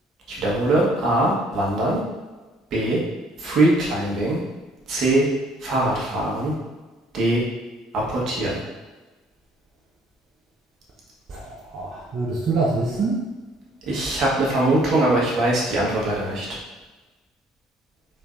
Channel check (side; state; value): both; normal; correlation 0.61